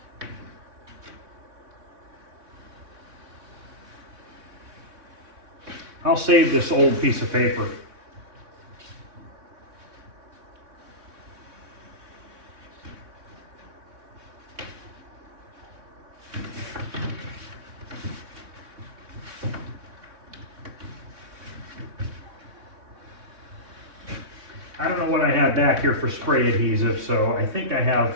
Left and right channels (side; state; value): left; late; 3.6 ms